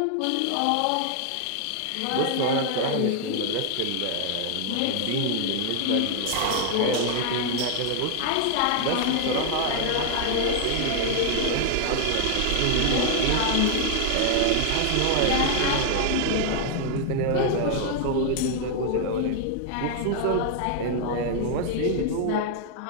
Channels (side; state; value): both; different; correlation 0.00